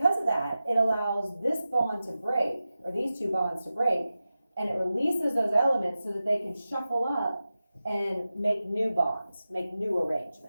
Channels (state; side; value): inverted; both; correlation -0.93